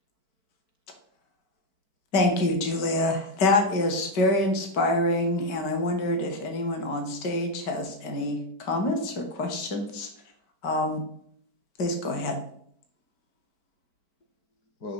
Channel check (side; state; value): right; late; 4.5 ms